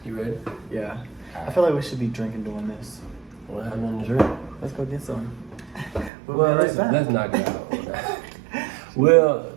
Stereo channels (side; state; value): left; drops out; at 6.1 s